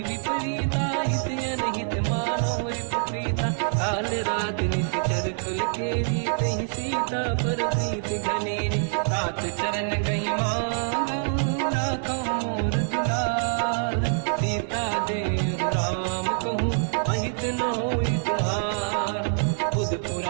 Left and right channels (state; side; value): silent; left; digital silence